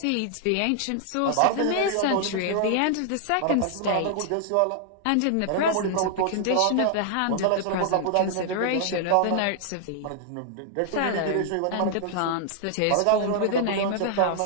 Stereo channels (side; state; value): both; different; correlation -0.01